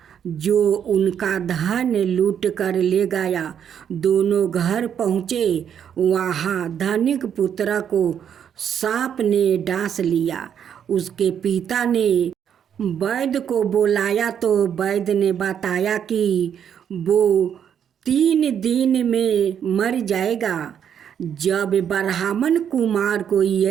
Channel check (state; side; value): quieter; left; 8.6 dB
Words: जो उनका धन लूट कर ले गया। दोनों घर पहुँचे। वहाँ धनिक पुत्र को सांप ने डांस लिया। उसके पिता ने वैद्य को बुलाया तो वैद्य ने बताया कि वो 3 दिन में मर जाएगा। जब ब्राह्मण कुमार को